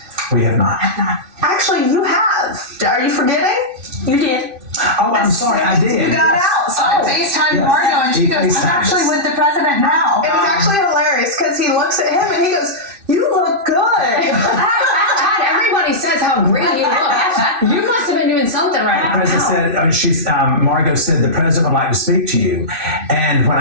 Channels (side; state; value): left; late; 2.5 ms